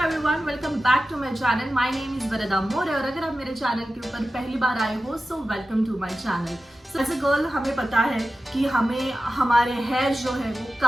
welcome back to my channel. My name is Varda More और अगर आप मेरे चैनल के ऊपर पहली बार आए हो so welcome to my channel. So as a girl हमें पता है कि हमें हमारे हेयर जो है वो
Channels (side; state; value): both; normal; correlation 0.94